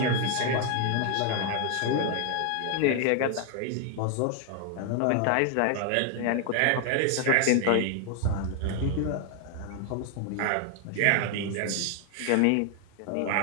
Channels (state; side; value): different; both; correlation 0.00